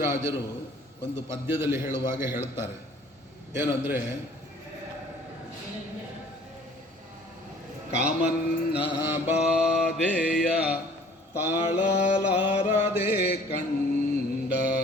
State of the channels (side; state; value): both; normal; correlation 0.53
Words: ಒಂದು ಪದ್ಯದಲ್ಲಿ ಹೇಳುವಾಗ ಹೇಳ್ತಾರೆ, ಏನಂದರೆ, ಕಾಮನ್ನ ಬಾಧೆಯ ತಾಳಲಾರದೆ ಕಂಡ